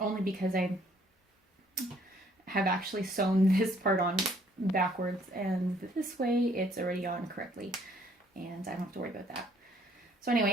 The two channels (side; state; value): both; normal; correlation 0.63